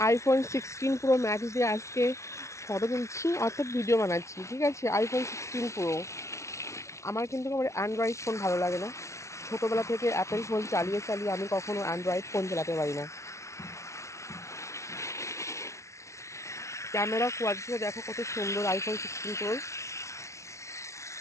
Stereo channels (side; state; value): right; late; 0.14 ms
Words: আইফোন 16 pro max দিয়ে আজকে ফটো তুলছি, অর্থাৎ ভিডিও বানাচ্ছি। ঠিক আছে, আইফোন 16 প্রো। আমার কিন্তু আমার অ্যান্ড্রয়েড ফোন ভালো লাগে না। ছোটোবেলা থেকে অ্যাপেল ফোন চালিয়ে চালিয়ে আমি কখনো অ্যান্ড্রয়েড ফোন চালাতে পারি না। ক্যামেরা কোয়ালিটিটা দেখো কত সুন্দর আইফোন 16 প্রো।